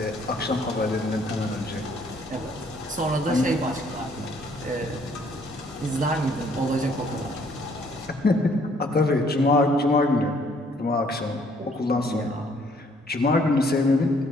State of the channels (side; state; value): both; normal; correlation 0.63